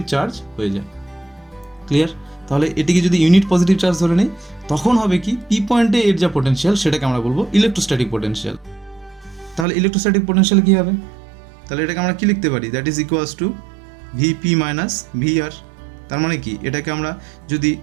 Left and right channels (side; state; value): left; drops out; at 9.7 s